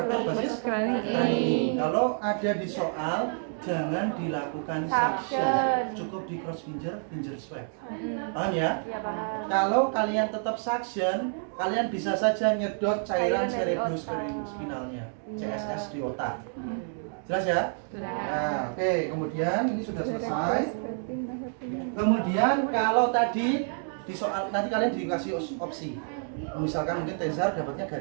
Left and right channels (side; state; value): left; silent; 59 dB below the other